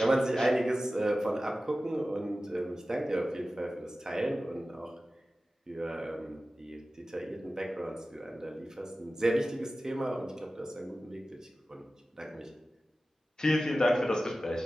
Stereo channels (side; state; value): both; normal; correlation 0.95